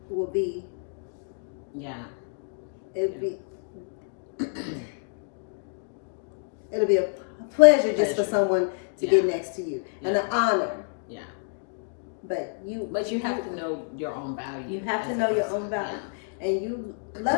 will be Yeah. it'll be a pleasure just for Pleasure. someone to Yeah. get next to you, and an honor. Yeah. But you have to know your own value. You have to as know a your person. own value, and you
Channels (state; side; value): silent; right; digital silence